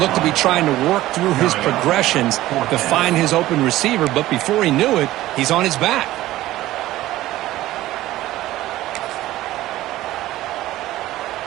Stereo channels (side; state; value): left; quieter; 15.8 dB